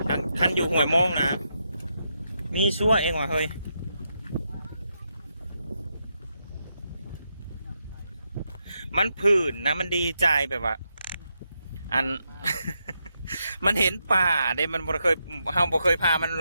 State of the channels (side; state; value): both; inverted; correlation -0.83